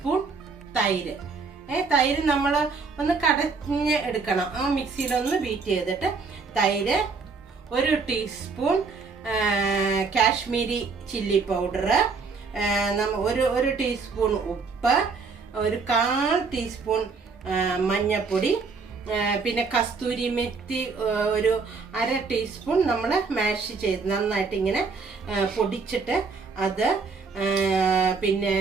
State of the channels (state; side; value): quieter; left; 4.7 dB